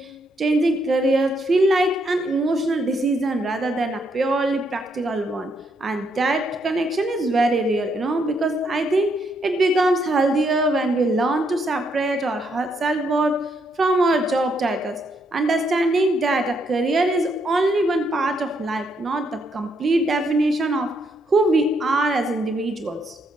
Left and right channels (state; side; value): normal; both; correlation 0.75